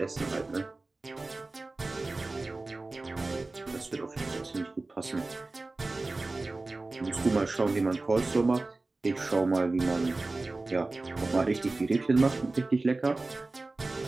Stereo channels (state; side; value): quieter; left; 3.3 dB